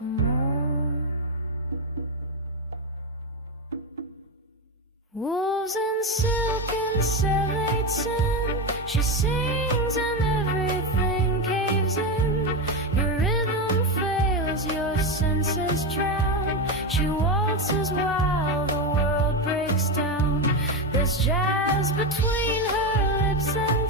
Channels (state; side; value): normal; both; correlation 0.12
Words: more. Wolves in silk and 𝒍�𝒔𝒕. She sings and everything caves in. Your rhythm fails, your senses drown. She waltzes while the world breaks down. There's jazz between her lips and